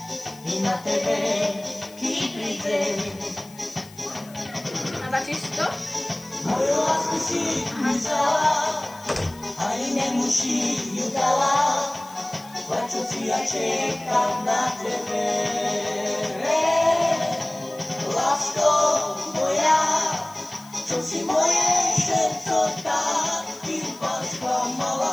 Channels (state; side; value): noise; left; hiss, 22 dB below the sound